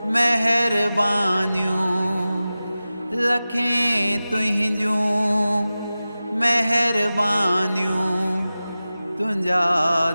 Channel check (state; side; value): inverted; both; correlation -0.96